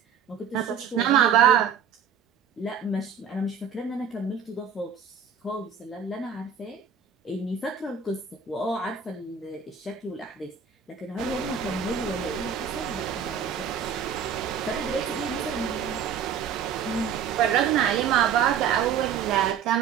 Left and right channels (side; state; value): left; quieter; 7.3 dB